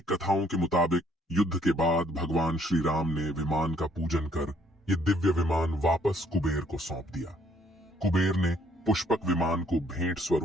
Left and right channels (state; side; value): normal; both; correlation 0.65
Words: कथाओं के मुताबिक युद्ध के बाद भगवान श्री राम ने विमान का पूजन कर ये दिव्य विमान वापस कुबेर को सौंप दिया। कुबेर ने पुष्पक विमान को भेंट